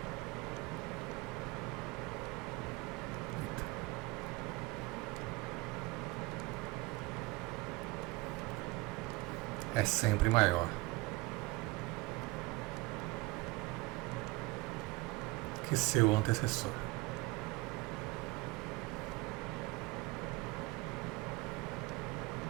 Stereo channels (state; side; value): quieter; left; 22.0 dB